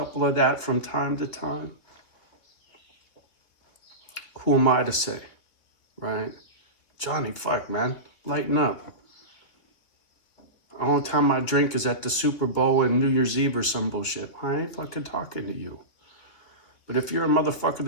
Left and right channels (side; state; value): right; late; 3.2 ms